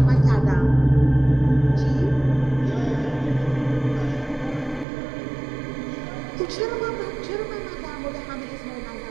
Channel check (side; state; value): left; drops out; at 4.9 s